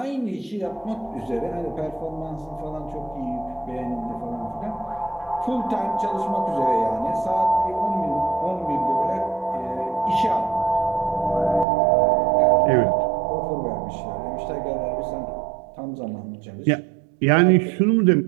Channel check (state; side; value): drops out; left; at 11.7 s